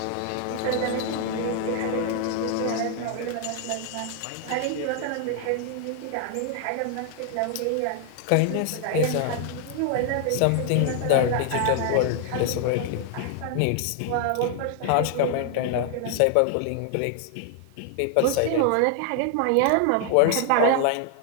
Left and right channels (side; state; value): both; different; correlation 0.00